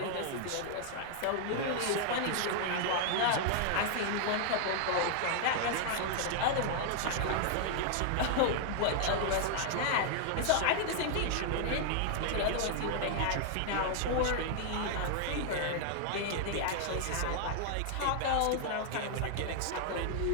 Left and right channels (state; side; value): different; both; correlation 0.00